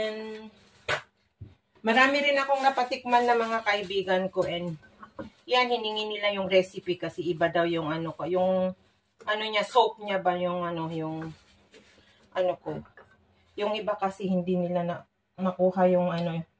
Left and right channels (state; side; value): identical; both; correlation 1.00